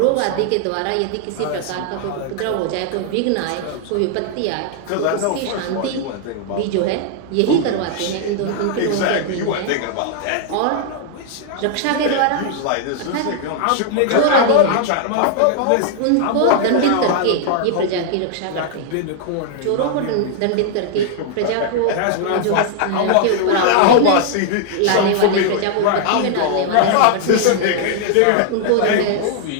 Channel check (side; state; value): both; different; correlation 0.00